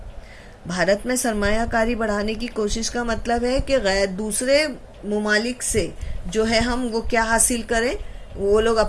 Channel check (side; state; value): both; identical; correlation 1.00